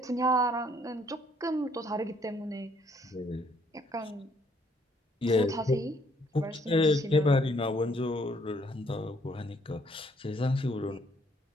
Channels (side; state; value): both; normal; correlation 0.66